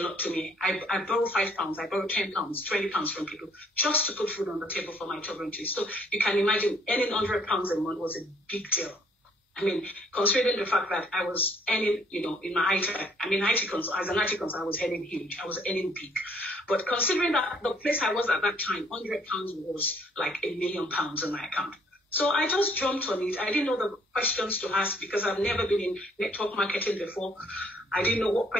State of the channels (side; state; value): both; normal; correlation 0.63